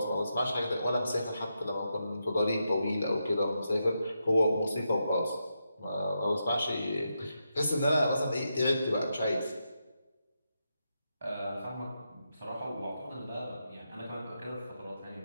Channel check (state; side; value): inverted; both; correlation -0.85